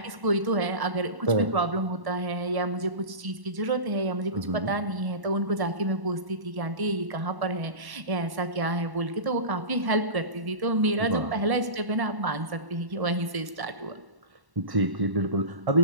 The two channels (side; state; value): left; late; 1.1 ms